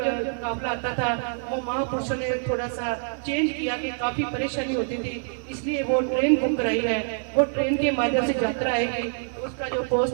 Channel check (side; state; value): left; silent; digital silence